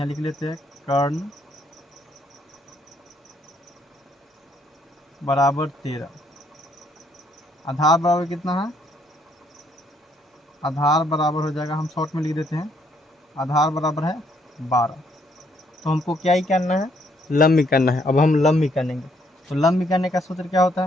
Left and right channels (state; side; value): normal; both; correlation 0.70